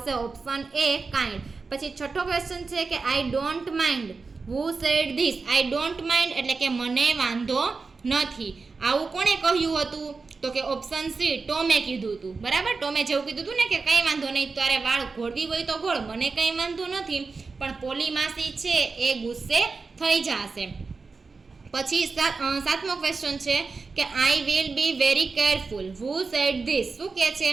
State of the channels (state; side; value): quieter; left; 4.4 dB